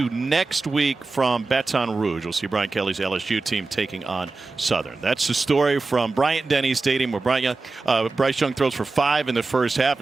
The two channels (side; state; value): left; quieter; 3.7 dB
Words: next week from Baton Rouge. We'll see Brian Kelly's LSU team taking on Southern. That's the story from Bryant-Denny Stadium, where Bryce Young throws for 5 in the first half